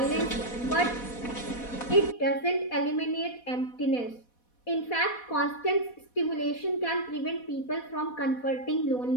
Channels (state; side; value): late; right; 4.1 ms